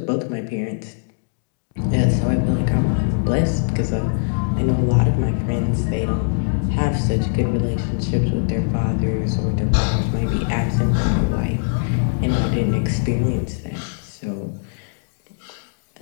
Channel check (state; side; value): silent; right; digital silence